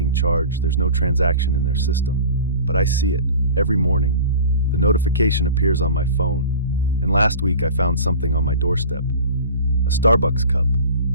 charged, there's no transaction in their system. But I see it, every morning. The notification appears on my phone. And last week I found something on my doorstep. A Starbucks cup,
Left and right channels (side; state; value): both; inverted; correlation -0.40